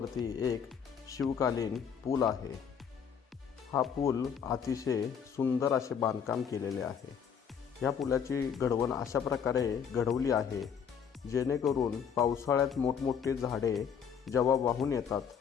एक शिवकालीन पूल आहे. हा पूल अतिशय सुंदर असे बांधकाम केलेले आहे. ह्या पुलाची घडवण अशा प्रकारे घडवली आहे जेणेकरून पावसाळ्यात मोठमोठे झाडे जेव्हा वाहून येतात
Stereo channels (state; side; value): quieter; right; 7.4 dB